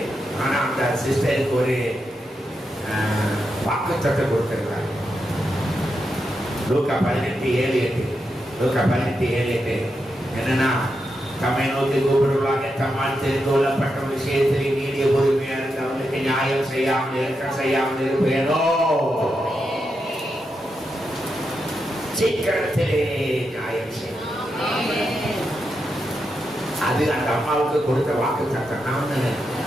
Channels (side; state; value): both; normal; correlation 0.85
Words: ஆனால் அந்த சிஸ்டருக்கு ஒரு வாக்குத்தத்தம் கொடுத்துருக்காங்க. லூக்கா 18:7. லூக்கா 18:7 என்னன்னா, தம்மை நோக்கி கூப்பிடுவாங்க, தம்மால் தெரிந்து கொள்ளப்பட்ட விஷயத்திலே நீடிய பொறுமையா இருந்தவனுக்கு நியாயம் செய்யாமல் இருப்பேனோ, சீக்கிரத்திலே நியாயம் செய்யும். அது அந்த அம்மாவுக்கு கொடுத்த வாக்கு தத்தம். நான்